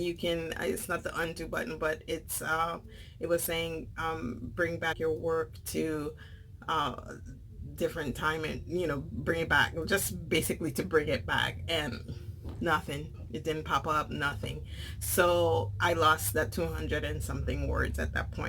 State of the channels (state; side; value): identical; both; correlation 1.00